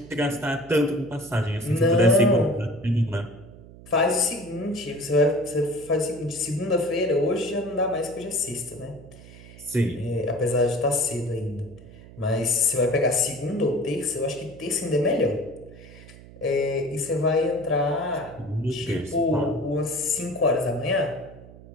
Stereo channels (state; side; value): noise; right; hum, 19 dB below the sound